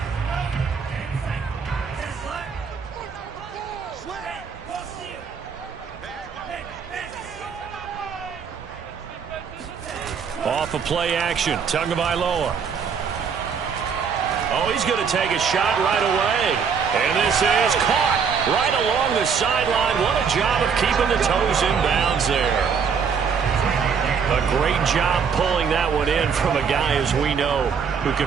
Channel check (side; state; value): left; quieter; 6.3 dB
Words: Off of play action, Tagovailoa. Oh, he's going to take a shot right away. And this is caught right along the sideline. What a job of keeping the toes in bounds there. A great job pulling that one in from a guy, as we know, who